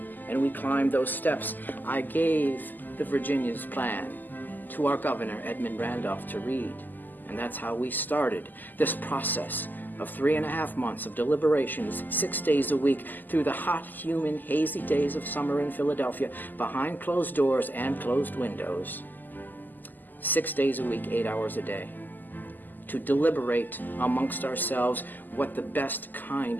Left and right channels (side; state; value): right; late; 0.086 ms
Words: and we climbed those steps, I gave the Virginia's plan to our governor, Edmund Randolph, to read. And that's how we started this process of 3.5 months of deliberations, 6 days a week, through the hot, humid, hazy days of summer in Philadelphia, behind closed doors and closed windows. 6 days a week, 8 hours a day, to deliberate amongst ourselves what the best kind